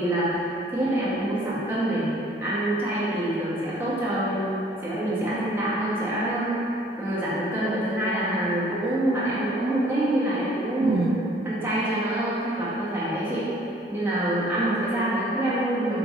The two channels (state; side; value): normal; both; correlation 0.56